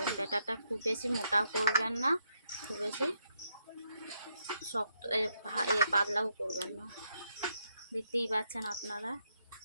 ব্যাটারটা খুব বেশি মোটা করবেন না, খুব বেশি শক্ত পাতলাও করবেন না। দেখতেই পাচ্ছেন আপনারা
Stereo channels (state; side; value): inverted; both; correlation -0.79